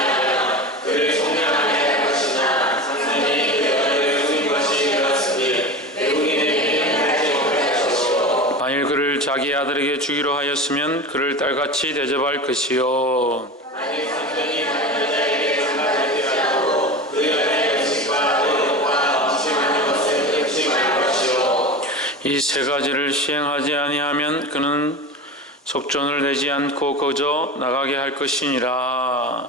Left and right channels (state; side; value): normal; both; correlation 0.29